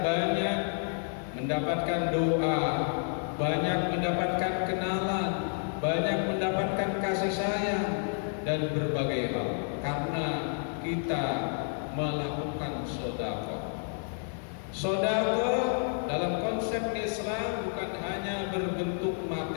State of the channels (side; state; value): right; silent; 58 dB below the other